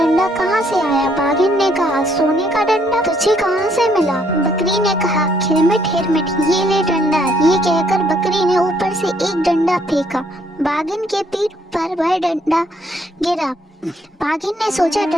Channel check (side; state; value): both; normal; correlation 0.68